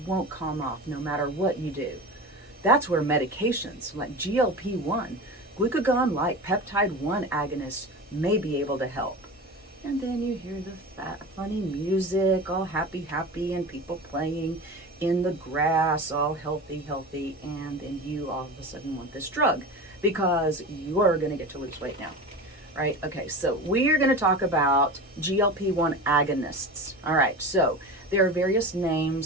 won't calm off no matter what you do. That's where medications like GLP-1, glucagon like peptide 1 agonists may be able to help. And then you hear the funny music, all happy, happy, and people playing in the grass, all healthy, healthy, and then you all of a sudden want this drug because you're going to get to lose weight now. Right? Okay, so we are going to talk about GLP-1 agonists. All right, so there are various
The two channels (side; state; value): both; normal; correlation 0.30